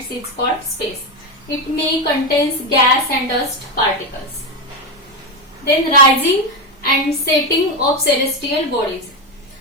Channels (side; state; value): both; normal; correlation 0.11